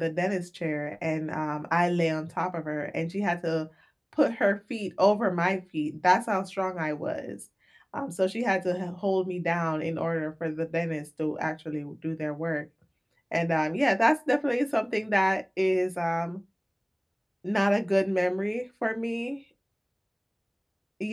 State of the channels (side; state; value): both; identical; correlation 1.00